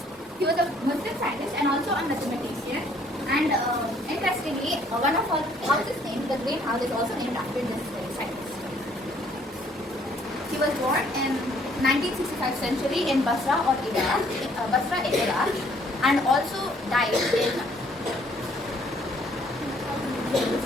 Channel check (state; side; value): normal; both; correlation 0.62